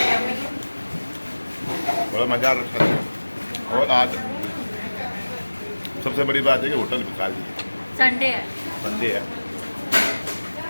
बड़ा मज़ा आ रहा है। और आज सबसे बड़ी बात है कि होटल भी खाली है, संडे है। संडे है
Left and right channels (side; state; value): both; inverted; correlation -1.00